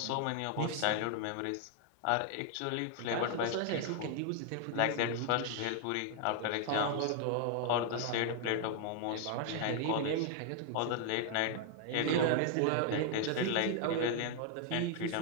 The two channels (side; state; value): both; different; correlation 0.00